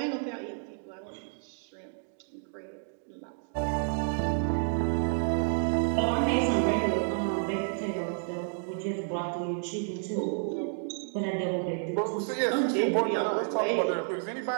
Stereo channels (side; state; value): left; silent; 58 dB below the other